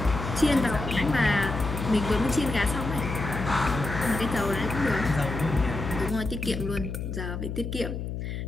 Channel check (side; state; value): left; noise; hum, 5 dB below the sound